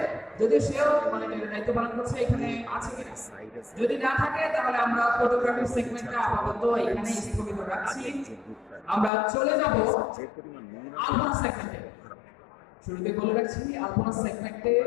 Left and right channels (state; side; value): drops out; right; at 9.1 s